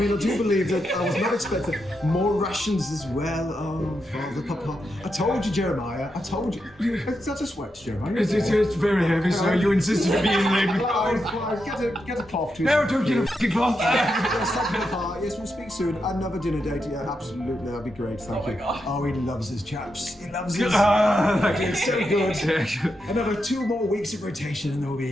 I do believe that I was not expecting more rations as well. Oh, Father, Papa. I told you, Jeremiah. I told you. Is that a sweat, Jeremiah? It's very heavy, so you insisted to be in there. Get a cloth to No, don't get a fucking cloth. Yes, thank you, Papa. Yes, we'll speak soon. Another dinner date. Yeah, absolutely. That'd be great. Thank you. God. Oh, he loves his chaps. He loves his. It's so good. Another 2 more weeks of rotation, and we'll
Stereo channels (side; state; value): both; normal; correlation 0.85